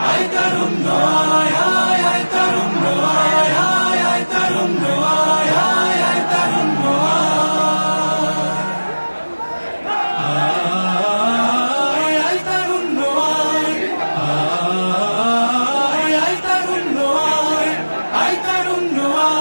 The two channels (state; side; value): inverted; both; correlation -1.00